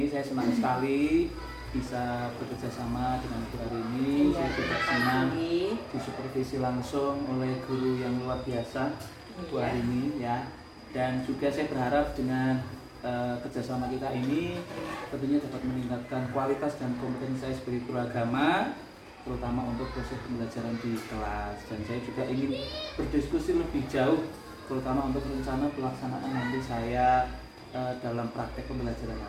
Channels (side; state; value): both; identical; correlation 1.00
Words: saya senang sekali bisa bekerja sama dengan Bu Arini. Iya, saya juga senang disupervisi langsung oleh guru yang luar biasa, Bu Arini ya. Dan juga saya berharap dengan kerjasama kita ini tentunya dapat meningkatkan kualitas dan kompetensi saya sebagai guru agama, terutama untuk proses pembelajaran di kelas. Dan saya juga ingin berdiskusi lebih jauh, terutama untuk rencana pelaksanaan nanti saya dalam praktek pembelajaran